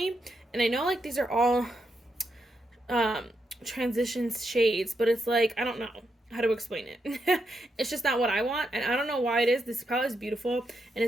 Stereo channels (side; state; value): both; normal; correlation 0.83